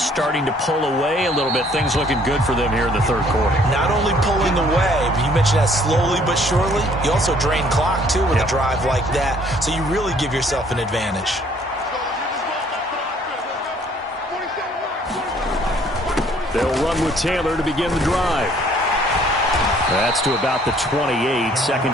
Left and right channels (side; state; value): both; normal; correlation 0.60